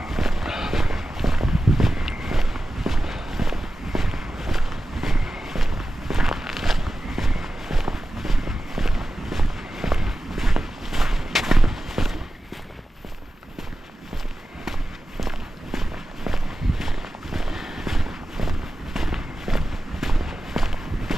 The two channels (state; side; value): normal; both; correlation 0.94